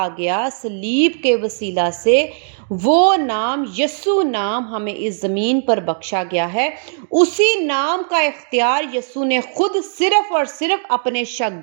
گیا صلیب کے وسیلہ سے، وہ نام یسوع نام ہمیں اس زمین پر بخشا گیا ہے۔ اسی نام کا اختیار یسوع نے خود صرف اور صرف اپنے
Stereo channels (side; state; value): left; silent; digital silence